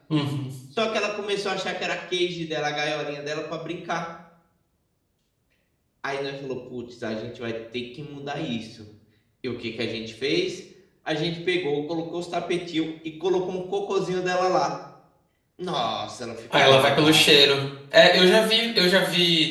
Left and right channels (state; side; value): identical; both; correlation 1.00